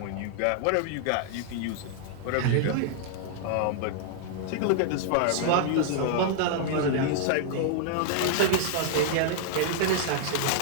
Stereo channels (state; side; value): different; both; correlation -0.01